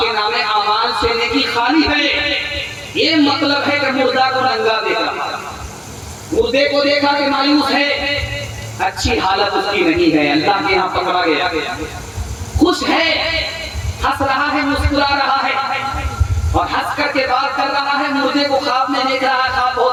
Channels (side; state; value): both; identical; correlation 1.00